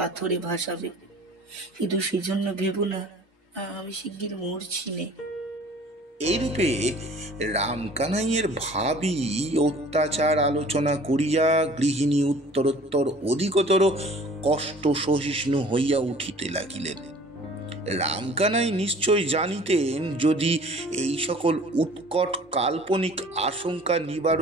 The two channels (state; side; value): normal; both; correlation 0.49